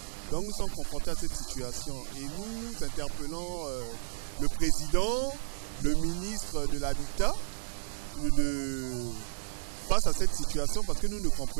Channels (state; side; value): silent; left; 56 dB below the other